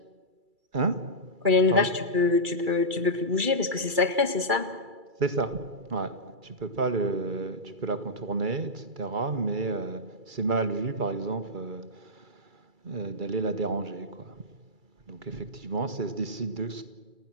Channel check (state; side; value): late; left; 2.3 ms